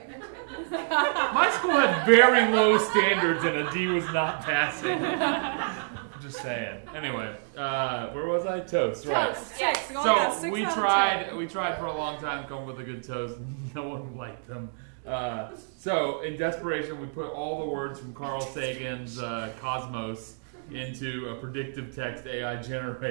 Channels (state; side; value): silent; left; digital silence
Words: My school had very low standards and a D was not passing. Just saying. Anyway, where was I? Toast, right? Toast, yes. So we tried for a long time to come up with a good toast. No one liked them. So in desperation, we put all the words from Carl Sagan's Cosmos into a predictive text AI